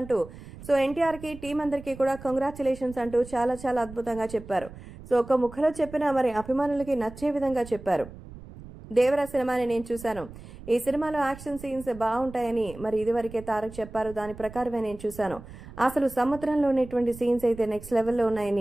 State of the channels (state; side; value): noise; right; rumble, 16 dB below the sound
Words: సో ఎన్టీఆర్ కి టీం అందరికీ కూడా కంగ్రాచులేషన్స్ అంటూ చాలా చాలా అద్భుతంగా చెప్పారు. సో ఒక ముఖలో చెప్పినా మరి అభిమానులకి నచ్చే విధంగా చెప్పారు. దేవరా సినిమాని నేను చూశాను. ఈ సినిమాలో యాక్షన్ సీన్స్ బాగుంటాయని మరి ఇదివరకే తారక్ చెప్పారు. దాని ప్రకారమే నేను చూశాను. అసలు సముద్రంలో ఉన్నటువంటి సీన్స్ అయితే నెక్స్ట్ లెవెల్లో